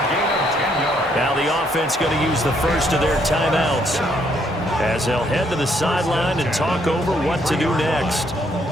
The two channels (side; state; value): both; normal; correlation 0.70